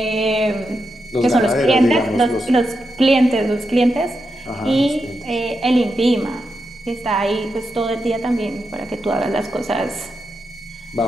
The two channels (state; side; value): normal; both; correlation 0.86